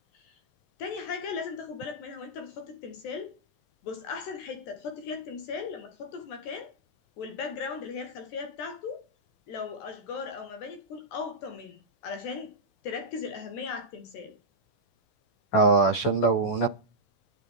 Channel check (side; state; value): right; late; 14 ms